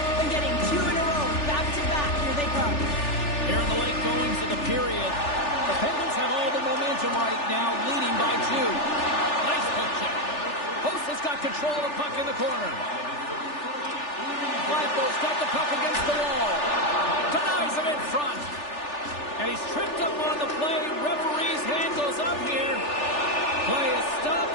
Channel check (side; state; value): right; late; 3.4 ms